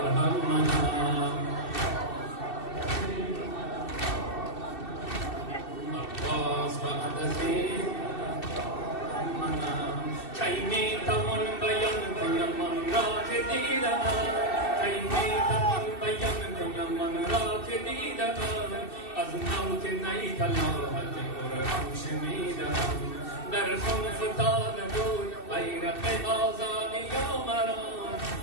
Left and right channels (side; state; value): right; late; 2.7 ms